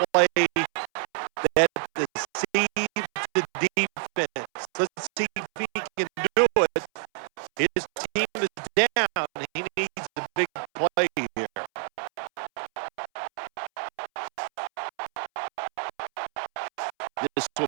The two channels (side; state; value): left; silent; 60 dB below the other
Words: play that deceives the defense. Let's see if he can do it. His team is down. He needs a big play here. This will